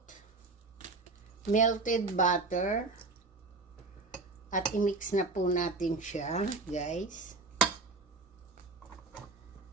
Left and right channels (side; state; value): left; quieter; 3.6 dB